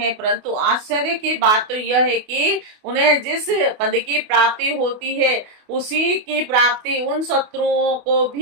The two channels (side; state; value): left; late; 28 ms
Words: परंतु आश्चर्य की बात तो यह है कि उन्हें जिस पद की प्राप्ति होती है उसी की प्राप्ति उन शत्रुओं को